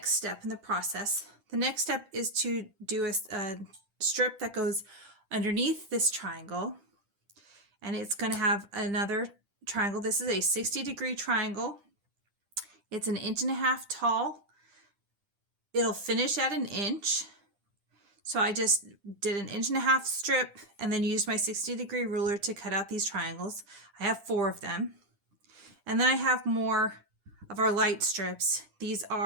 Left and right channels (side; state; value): left; late; 10 ms